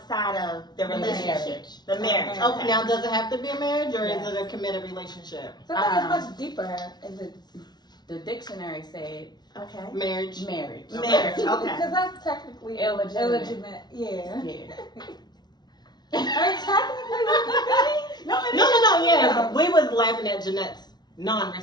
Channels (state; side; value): late; right; 0.20 ms